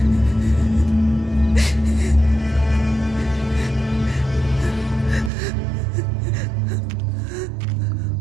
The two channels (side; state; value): left; drops out; at 5.3 s